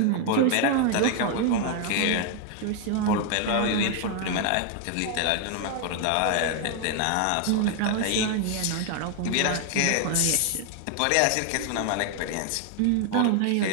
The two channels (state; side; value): different; both; correlation 0.01